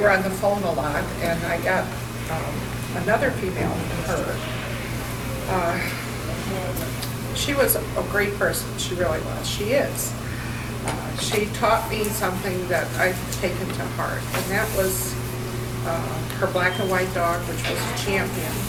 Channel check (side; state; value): both; identical; correlation 1.00